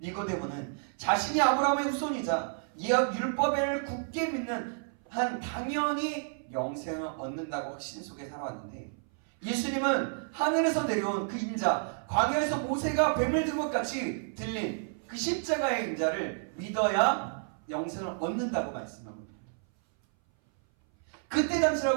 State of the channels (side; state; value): left; silent; 57 dB below the other